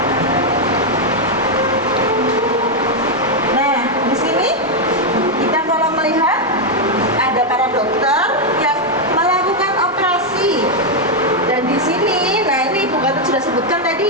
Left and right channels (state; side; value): normal; both; correlation 0.01